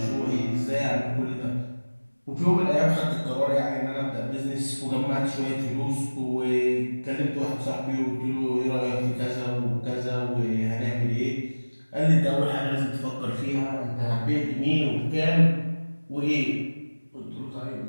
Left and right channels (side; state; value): both; inverted; correlation -1.00